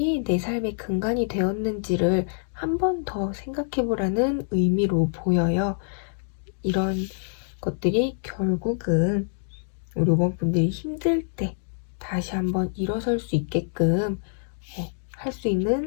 내 삶의 근간이 되었는지를 한 번 더 생각해 보라는 의미로 보여요. 이런 것들이 결국은 우리 5번 분들이 힘들 때 다시 한번 일어설 수 있게끔 할 수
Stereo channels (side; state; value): right; silent; digital silence